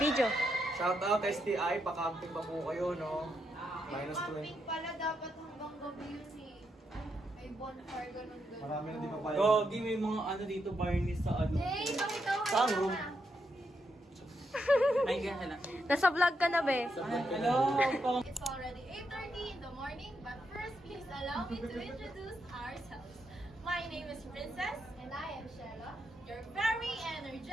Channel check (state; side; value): normal; both; correlation 0.81